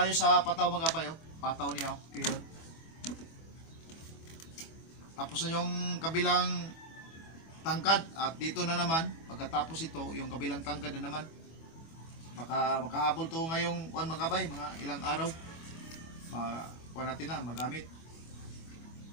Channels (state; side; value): late; right; 24 ms